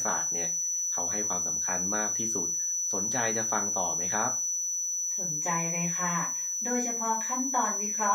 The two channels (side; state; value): right; noise; hiss, 24 dB below the sound